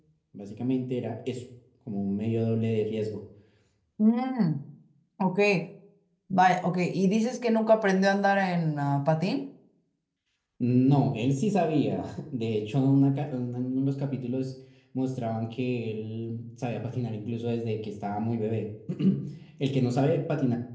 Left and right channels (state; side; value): identical; both; correlation 1.00